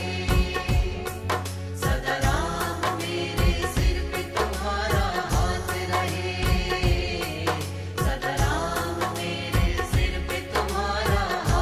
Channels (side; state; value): both; identical; correlation 1.00